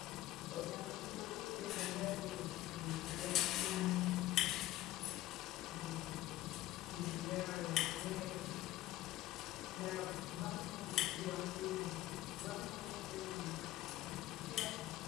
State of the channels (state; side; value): quieter; right; 15.8 dB